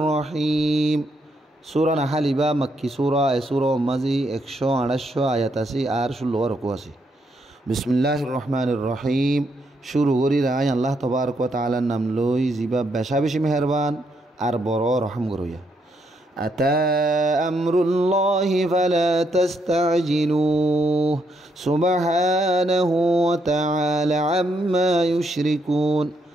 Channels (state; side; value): normal; both; correlation 0.76